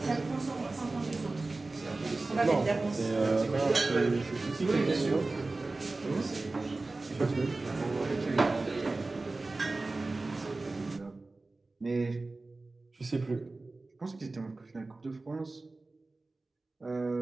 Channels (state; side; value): quieter; left; 3.3 dB